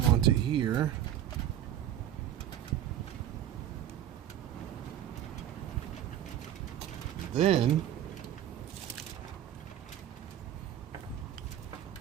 onto here, and then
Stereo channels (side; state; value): left; quieter; 11.2 dB